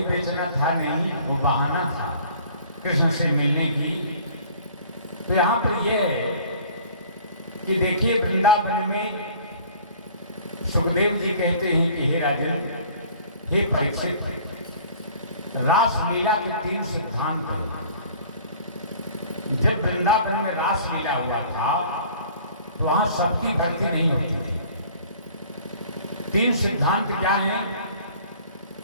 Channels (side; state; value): both; inverted; correlation -0.50